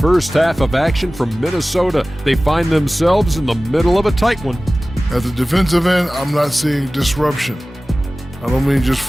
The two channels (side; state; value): both; normal; correlation 0.97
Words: half of action from Minnesota, they find themselves in the middle of a tight one. At the defensive end, I'm not seeing disruption. I don't mean just